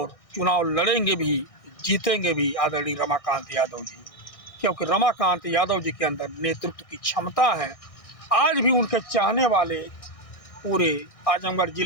चुनाव लड़ेंगे भी, जीतेंगे भी आदरणीय रमाकांत यादव जी, क्योंकि रमाकांत यादव जी के अंदर नेतृत्व की क्षमता है। आज भी उनके चाहने वाले पूरे आजमगढ़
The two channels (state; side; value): late; right; 1.6 ms